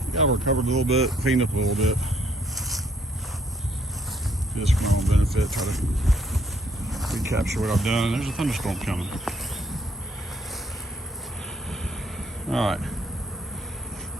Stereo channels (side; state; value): both; normal; correlation 0.69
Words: got recovered a little bit, cleaned up a little bit, just for my own benefit. Try to recapture what I've done. There's a thunderstorm coming. All right,